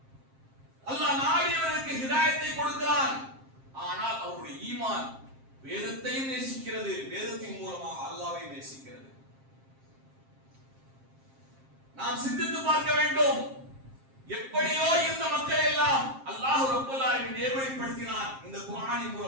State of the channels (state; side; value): late; left; 7.5 ms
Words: அல்லாஹ் நாடியவருக்கு ஹிதாயத்தை கொடுக்கிறான். ஆனால் அவருடைய ஈமான் வேதத்தையும் நேசிக்கிறது, வேதத்தின் மூலமாக அல்லாஹ்வை நேசிக்கிறது. நாம் சிந்தித்து பார்க்க வேண்டும். எப்படியோ இந்த மக்கள் எல்லாம் அல்லாஹ் ரப்பல் ஆலமீன் நேர்வழிப்படுத்தினான் இந்த குர்ஆனின்